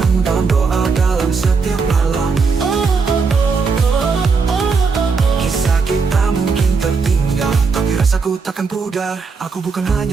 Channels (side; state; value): left; quieter; 4.9 dB